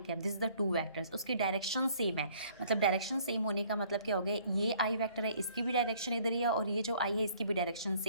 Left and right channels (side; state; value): both; inverted; correlation -0.59